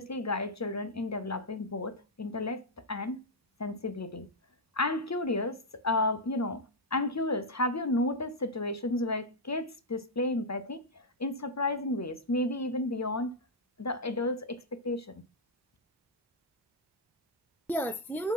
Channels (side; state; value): both; normal; correlation -0.03